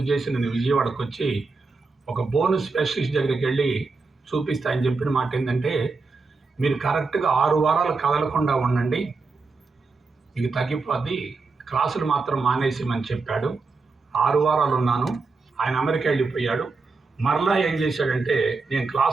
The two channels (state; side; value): quieter; left; 4.1 dB